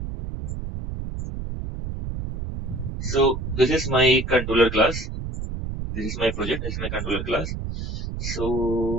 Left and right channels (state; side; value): noise; right; rumble, 5 dB below the sound